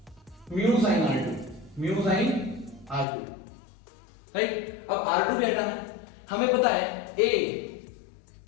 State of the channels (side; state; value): right; drops out; at 3.1 s